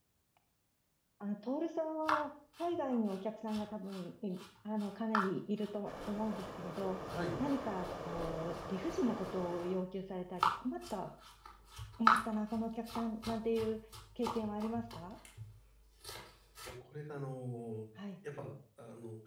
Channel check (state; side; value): identical; both; correlation 1.00